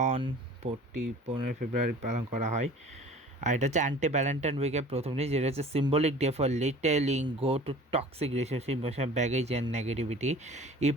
অন 15 ফেব্রুয়ারি পালন করা হয়। আর এটা হচ্ছে অ্যান্টি ভ্যালেন্টাইন উইকের প্রথম দিন, যেটা হচ্ছে symbolic day for letting go to toxic relationship, baggage and negativity. It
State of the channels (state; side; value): normal; both; correlation 0.44